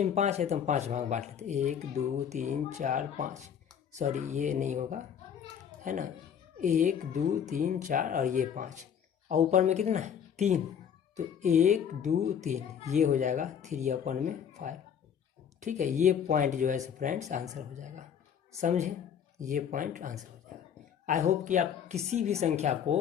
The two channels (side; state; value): right; quieter; 8.3 dB